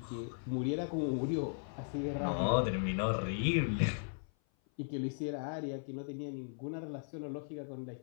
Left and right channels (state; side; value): silent; right; 53 dB below the other